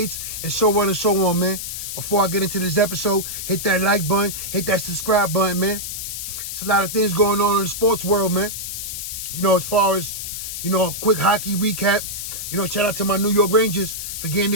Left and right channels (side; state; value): left; noise; hiss, 6 dB below the sound